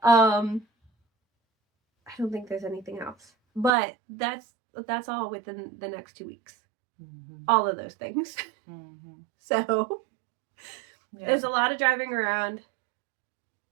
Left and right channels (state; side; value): drops out; left; at 3.7 s